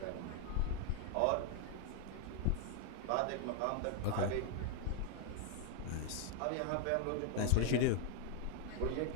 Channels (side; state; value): both; different; correlation 0.01